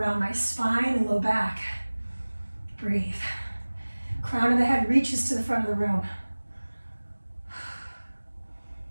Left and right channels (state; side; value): inverted; both; correlation -1.00